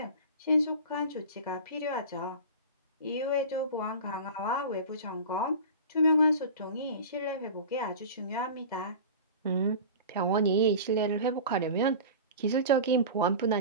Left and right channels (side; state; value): both; inverted; correlation -0.34